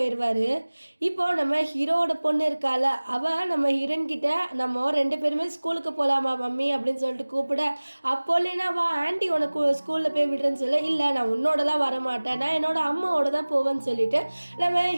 இப்போது நம்ம ஹீரோவோட பொண்ணு இருக்கால, அவள் நம்ம ஹீரோயின் கிட்ட நம்ம 2 பேருமே ஸ்கூலுக்கு போகலாமா மம்மி அப்படின்னு சொல்லிட்டு கூப்பிட, அப்போ லினா வா ஆண்டி உனக்கு ஸ்கூலில் போய் விடுறேன்னு சொல்ல, இல்லை நான் உன்னோடலாம் வரமாட்டேன், நான் என்னோட அம்மாவோட தான் போவேன்னு சொல்லிட்டு நம்ம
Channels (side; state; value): both; inverted; correlation -1.00